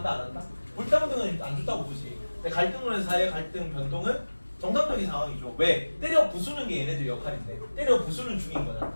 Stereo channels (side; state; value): both; inverted; correlation -1.00